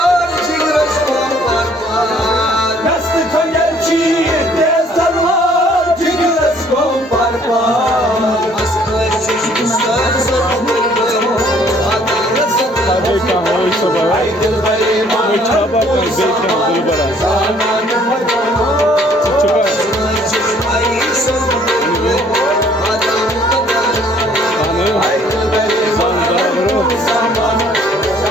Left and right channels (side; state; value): both; normal; correlation 0.60